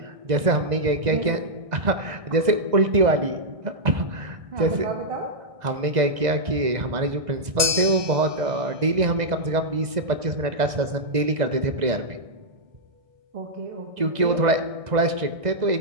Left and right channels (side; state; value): left; late; 2.0 ms